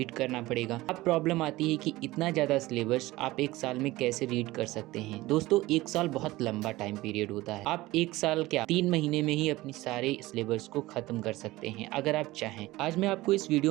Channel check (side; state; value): left; quieter; 18.6 dB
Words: करना पड़ेगा। अब प्रॉब्लम आती है कि इतना ज़्यादा सिलेबस आप एक साल में कैसे रीड कर सकते हैं? दोस्तों, एक साल बहुत लंबा टाइम पीरियड होता है। आप एक साल क्या 3 महीने में ही अपनी सारे सिलेबस को खत्म कर सकते हैं अगर आप चाहें। आज मैं आपको इस